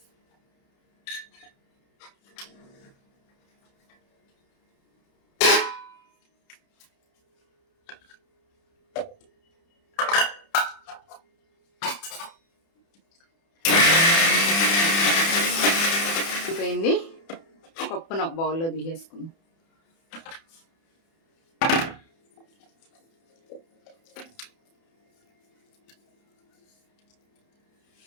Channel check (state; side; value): late; right; 30 ms